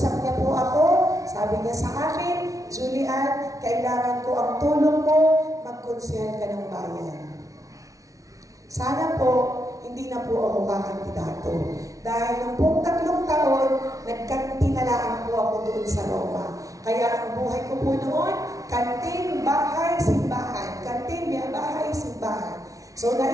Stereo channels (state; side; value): late; left; 0.17 ms